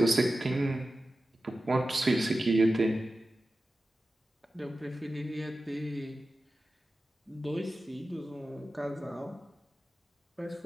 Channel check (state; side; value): normal; both; correlation 0.94